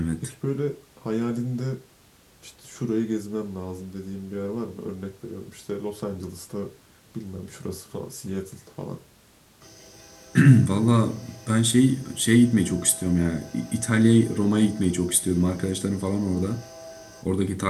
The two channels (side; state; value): both; identical; correlation 1.00